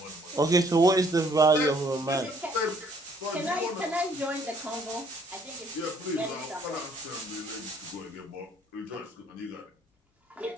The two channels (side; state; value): both; normal; correlation 0.63